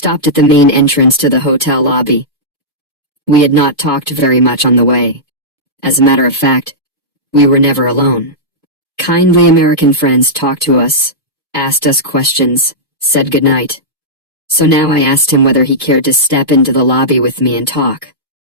at the main entrance to the hotel lobby. We had not talked very much on the way. As a matter of fact, we were never alone. Kindly American friends talked to us, asked us questions, said goodnight. So now I asked him whether he cared to step into the lobby with me and talk.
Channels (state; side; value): normal; both; correlation -0.12